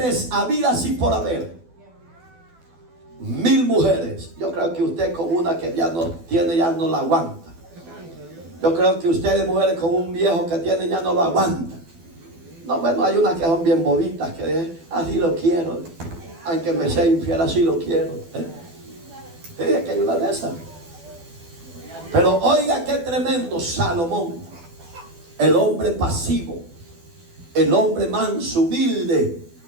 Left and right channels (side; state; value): left; late; 12 ms